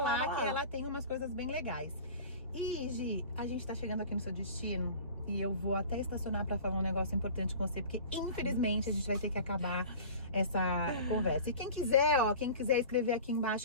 que ela tem umas coisas bem legais. E, Gi, a gente tá chegando aqui no seu destino. e eu vou até estacionar pra falar um negócio importante com você, porque infelizmente a gente vai ter que acabar essa conversa. E quem quiser, quem quiser escrever aqui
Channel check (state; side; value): inverted; both; correlation -0.40